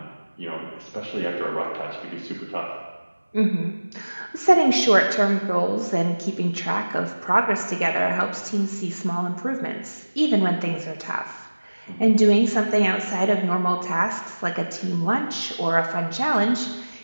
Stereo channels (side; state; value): both; inverted; correlation -1.00